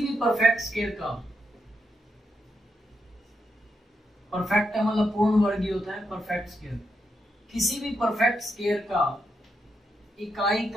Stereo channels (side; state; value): both; normal; correlation 0.82